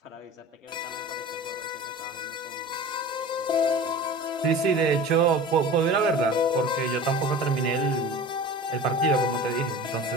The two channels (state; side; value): normal; both; correlation 0.37